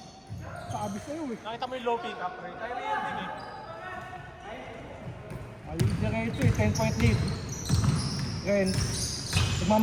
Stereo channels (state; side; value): identical; both; correlation 1.00